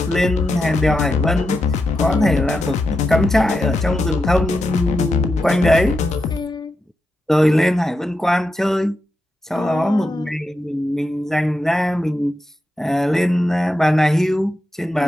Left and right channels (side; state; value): both; normal; correlation 0.87